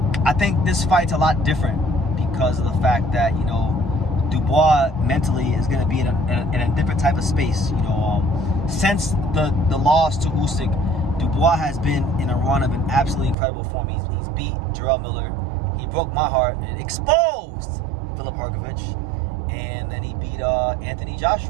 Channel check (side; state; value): left; drops out; at 13.4 s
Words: I think this fight's a lot different because of the fact that Dubois mentally is going to be in a different type of space. Since the loss to Usyk, Dubois has been in a run of an absolutely incredible form. He's beat Jarrell Miller. He broke my heart and exposed Filip Hrgovic, and then he beat Anthony